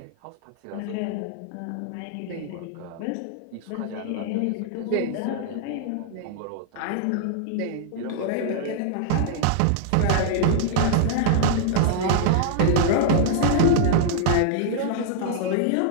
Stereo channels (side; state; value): both; different; correlation -0.01